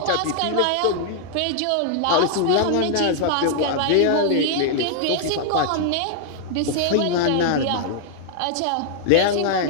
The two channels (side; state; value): both; different; correlation 0.00